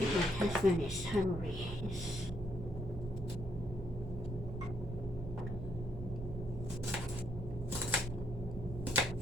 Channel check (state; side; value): noise; right; hum, 9 dB below the sound